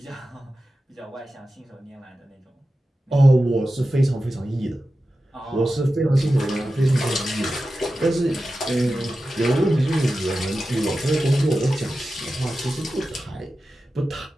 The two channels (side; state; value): both; normal; correlation 0.93